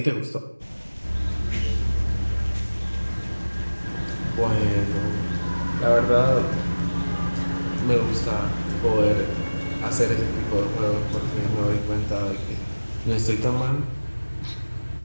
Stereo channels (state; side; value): inverted; both; correlation -1.00